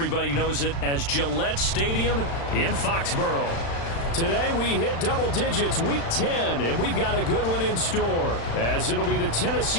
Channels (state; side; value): late; right; 35 ms